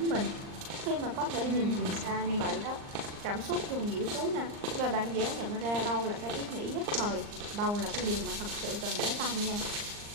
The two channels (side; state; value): left; late; 39 ms